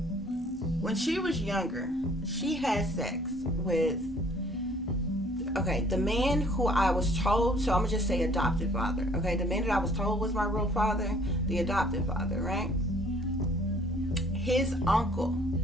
when she was younger, she had sex with, okay, the man who I was told, so I'm going to just say adopted father, okay? The man that I was told was my real father, the adopted father, right? His uncle,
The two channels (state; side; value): normal; both; correlation 0.57